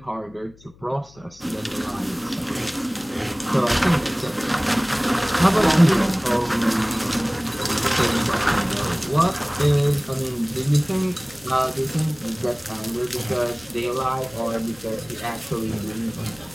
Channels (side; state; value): left; noise; hum, 25 dB below the sound